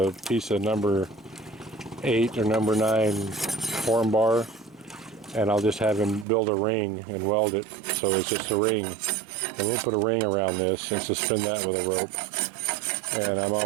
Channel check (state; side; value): drops out; left; at 6.2 s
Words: piece of number 8 or number 9 form bar, and I'll just have him build a ring and weld it so it's just a ring. And we'll put a ring around this and suspend that with a rope. And I'm